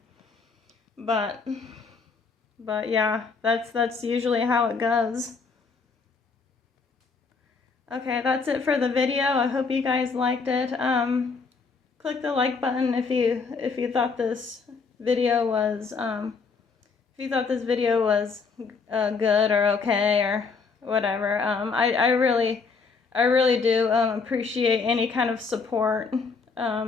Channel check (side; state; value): right; quieter; 4.8 dB